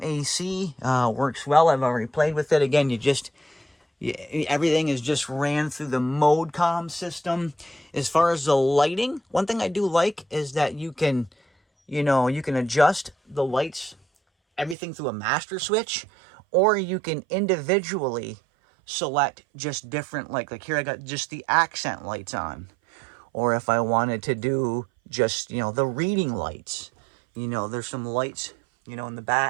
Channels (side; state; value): left; drops out; at 14.8 s